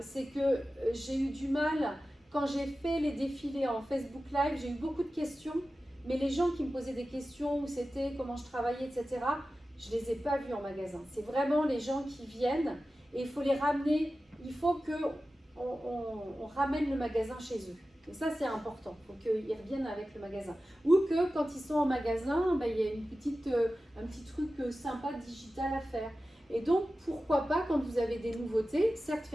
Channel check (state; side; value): normal; both; correlation 0.94